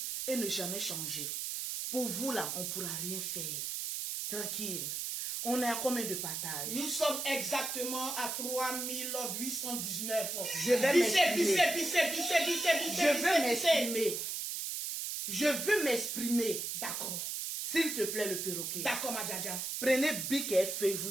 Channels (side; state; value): right; noise; hiss, 3 dB below the sound